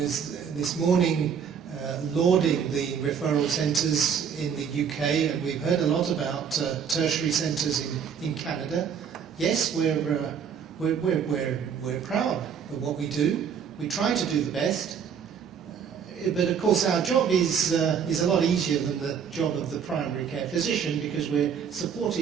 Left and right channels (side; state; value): left; quieter; 7.4 dB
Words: this morning lauding the referral centres in the UK, and we've heard a lot about tertiary centres in Canada. Yes, we're proud of what we do. We try to do the best. But of course our job is a lot easier than the job of the primary care physician, because we're